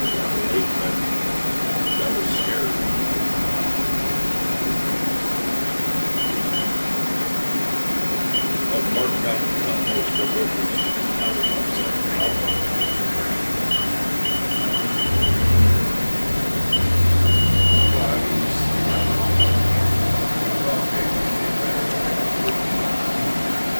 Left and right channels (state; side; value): inverted; both; correlation -1.00